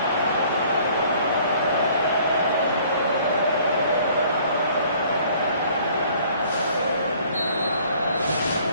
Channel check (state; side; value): inverted; both; correlation -0.56